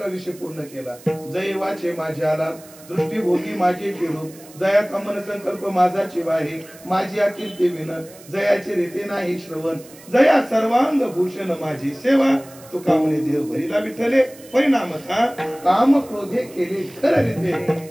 विषय पूर्ण केला. जय वाचे माझे आला, दृष्टीभोगी माझे चिरू. जयाचा मन संकल्प माझा चिवाहे, माझी अकीर्ती विन. जयाचे रीते नाही श्रवण, जया सर्वांग भूषण माझी सेवा. तो कामने देह भरिला विठ्ठले. परिणाम काम क्रोधे केले खरं रीते.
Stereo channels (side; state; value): right; noise; hiss, 21 dB below the sound